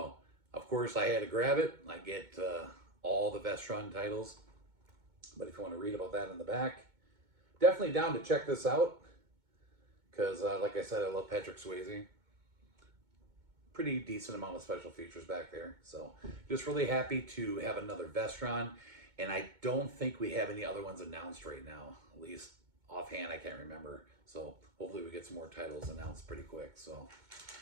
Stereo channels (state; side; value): late; left; 2.2 ms